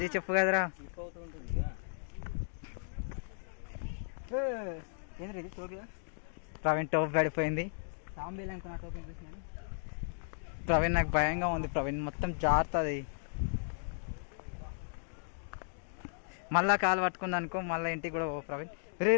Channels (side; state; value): right; silent; digital silence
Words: చెప్పు కదరా. ఏంద్ర ఇది టోపీ? ప్రవీణ్ టోపీ పడిపోయింది. సాంబేలు అనుకున్నా టోపీ చూసినాను. ప్రవీణ్ నాకు భయంగా ఉంది. ప్రవీణ్ మొత్తం జారుతుంది. మళ్ళా కాలు పట్టుకుంది అనుకో, మళ్ళీ ఇంటికి కూడా పో ప్రవీణ్. రే